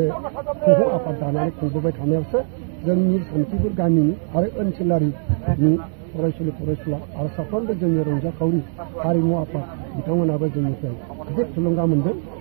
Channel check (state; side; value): silent; left; digital silence